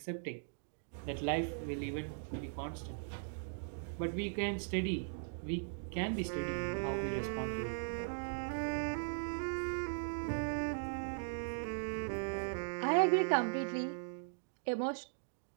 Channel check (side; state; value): left; silent; digital silence